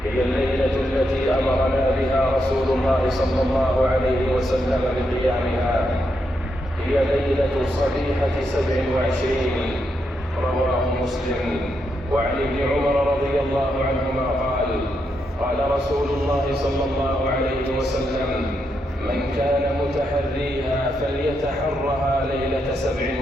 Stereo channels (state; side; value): normal; both; correlation 0.82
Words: هي الليلة التي أمرنا بها رسول الله صلى الله عليه وسلم بقيامها. هي ليلة صبيحة 27. رواه مسلم. وعن ابن عمر رضي الله عنهما قال: قال رسول الله صلى الله عليه وسلم: من كان متحريها فليتحرها ليلة